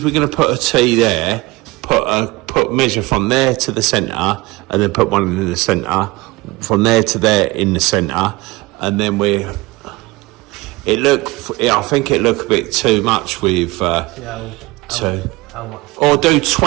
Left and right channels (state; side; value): quieter; left; 21.8 dB